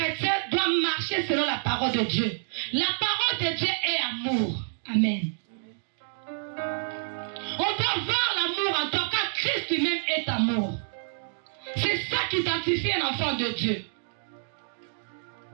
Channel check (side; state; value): left; silent; digital silence